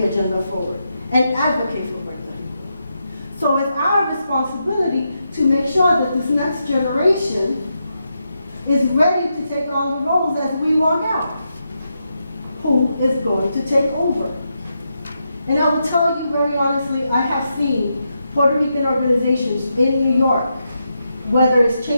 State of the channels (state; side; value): inverted; both; correlation -0.84